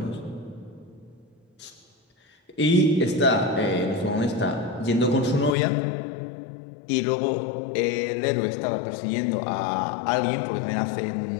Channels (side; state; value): right; drops out; at 5.5 s